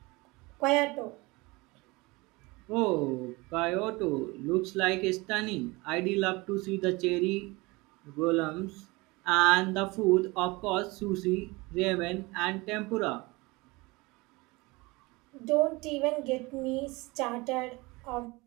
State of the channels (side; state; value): left; quieter; 23.9 dB